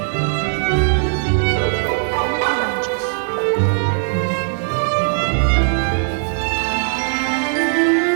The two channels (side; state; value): left; silent; digital silence